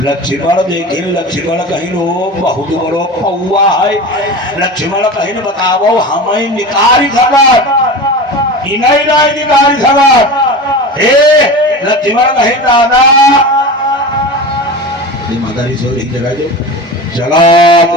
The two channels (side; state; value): both; normal; correlation 0.30